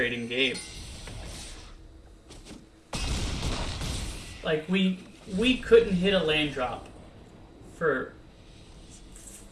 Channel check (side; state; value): both; identical; correlation 1.00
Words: game. Like, we couldn't hit a land drop for